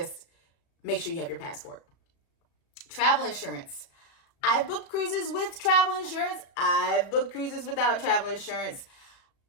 make sure you have your passport. Travel insurance. I've booked cruises with travel insurance. I've booked cruises without travel insurance.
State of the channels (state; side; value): late; right; 36 ms